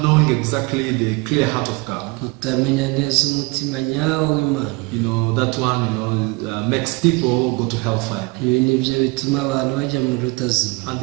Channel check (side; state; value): left; quieter; 26.8 dB